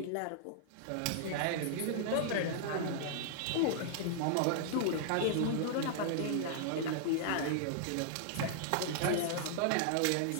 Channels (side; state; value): both; different; correlation -0.01